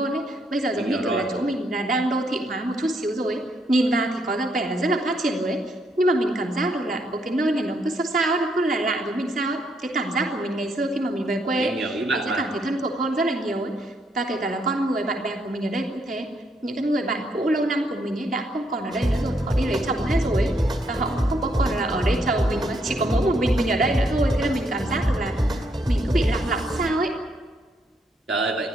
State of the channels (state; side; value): normal; both; correlation 0.74